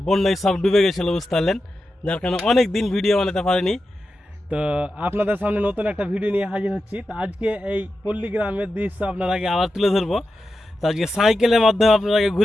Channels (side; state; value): both; normal; correlation 0.90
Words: বন্যায় সব ডুবে গেছিলো, বুঝতে পারলেন, যার কারণে অনেক দিন ভিডিও বানাতে পারিনি। তো আপনাদের সামনে নতুন একটা ভিডিও নিয়ে হাজির হচ্ছি। তো আজকে এই পল্লী গ্রামের দৃশ্য আপনারাকে আবার তুলে ধরবো। তো আজকে সাইকেলের মাধ্যমে আপনারাকে